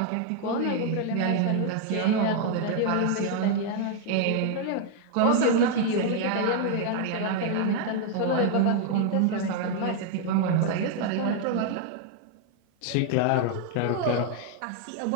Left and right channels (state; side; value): different; both; correlation 0.00